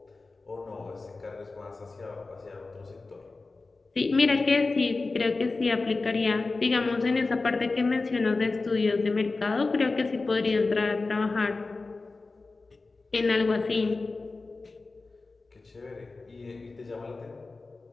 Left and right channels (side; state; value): right; quieter; 3.7 dB